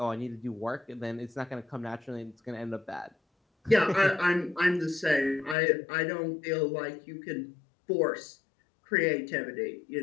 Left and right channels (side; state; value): right; drops out; at 5.6 s